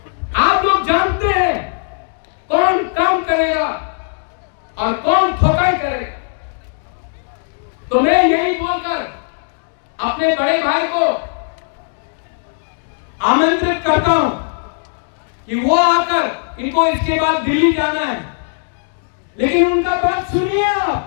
आप लोग जानते हैं कौन काम करेगा और कौन ठोकाई करेगा। तो मैं यही बोलकर अपने बड़े भाई को आमंत्रित करता हूं कि वो आकर, इनको इसके बाद दिल्ली जाना है, लेकिन उनका बात सुनिए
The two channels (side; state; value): right; silent; digital silence